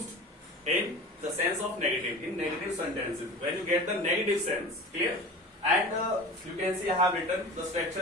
in the sense of negative, in negative sentences when you get the negative sense. Clear? And you can see I have written the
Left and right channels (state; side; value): normal; both; correlation 0.35